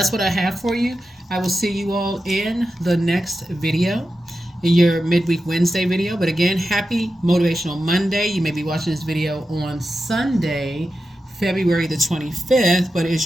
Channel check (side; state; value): both; normal; correlation 0.91